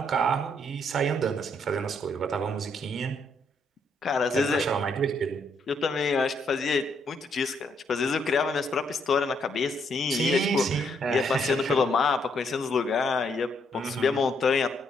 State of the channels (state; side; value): normal; both; correlation 0.73